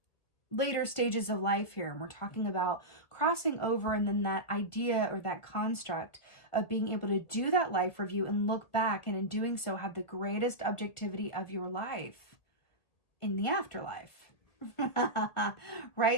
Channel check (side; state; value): right; late; 2.0 ms